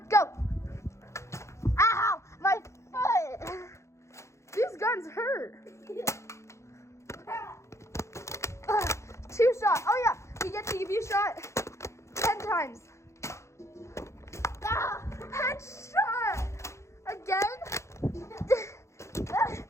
go. Ow! My hands hurt. 2 shot. Oh yeah, we get to give you a shot 10 times. Headshot! Again?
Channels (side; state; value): right; late; 0.14 ms